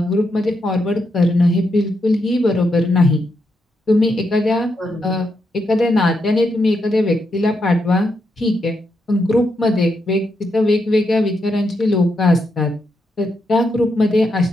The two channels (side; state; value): both; normal; correlation 0.82